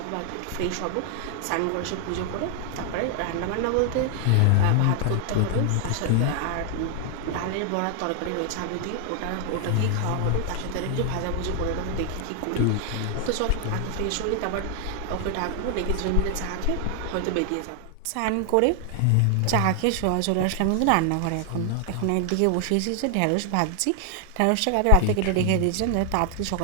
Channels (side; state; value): both; different; correlation 0.00